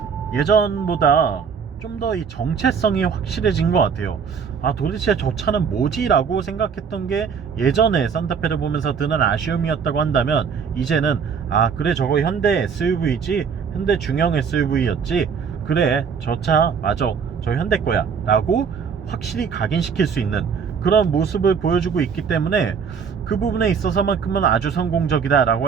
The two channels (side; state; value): left; quieter; 6.4 dB